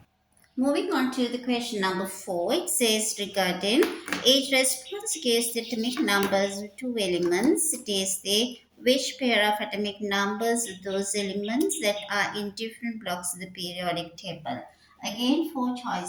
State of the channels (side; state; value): both; identical; correlation 1.00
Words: Moving on to the question number 4, it says regarding each response gives the atomic numbers of two elements. It is the which pair of atomic numbers of those elements that are in different blocks of the periodic table. Again, four